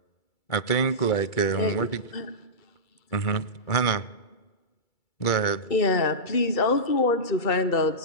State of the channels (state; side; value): late; right; 2.3 ms